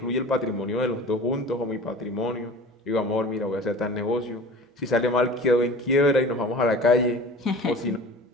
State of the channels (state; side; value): normal; both; correlation 0.40